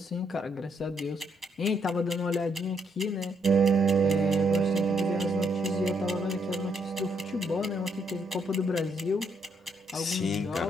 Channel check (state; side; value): normal; both; correlation 0.74